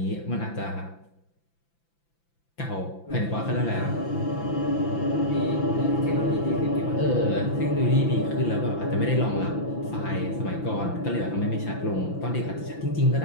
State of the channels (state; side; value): late; right; 5.9 ms